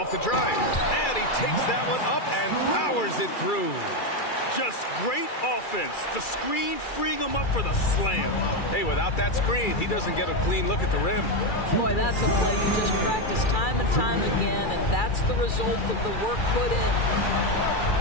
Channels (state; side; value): late; right; 2.3 ms